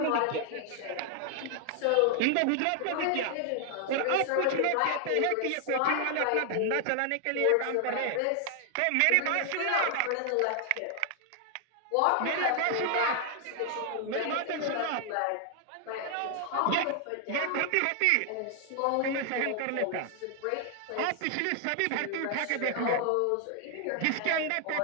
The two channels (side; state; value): both; different; correlation 0.00